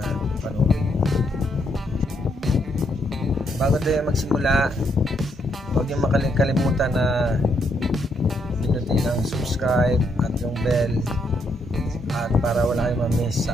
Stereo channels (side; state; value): both; normal; correlation 0.75